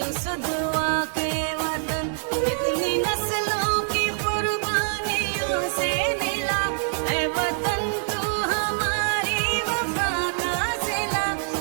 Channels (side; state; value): left; silent; digital silence